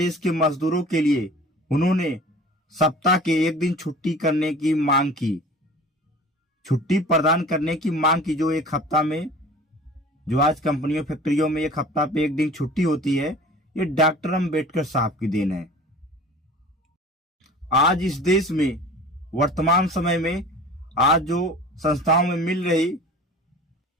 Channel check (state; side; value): normal; both; correlation 0.42